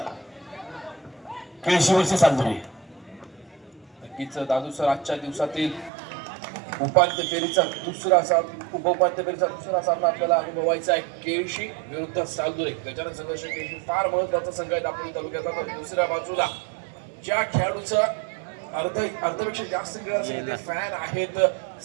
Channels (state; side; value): drops out; left; at 5.9 s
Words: केळशी वर्सेस सालदुरे. नक्कीच दादू सर आजच्या दिवसातील उपांत्य फेरीचा दुसरा सामना आपल्याला अनुभवायचा आहे. केळशी विरुद्ध सालदुरे. गजानन संघर्ष केळशी फार महत्वाचा संघ आहे दापोली तालुक्याचा. तर दुसऱ्या बाजूला ज्या खेळाडूचा अर्धपेक्षा जास्त क्रीडा फॅन आहेत